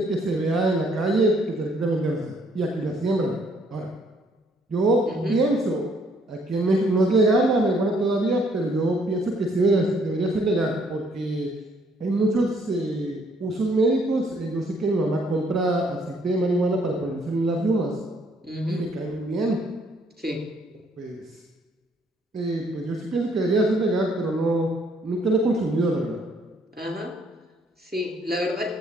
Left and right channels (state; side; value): normal; both; correlation 0.66